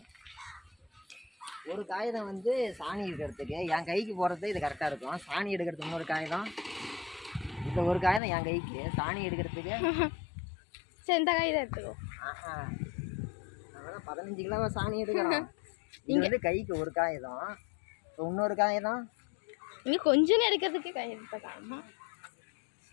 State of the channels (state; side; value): drops out; right; at 8.2 s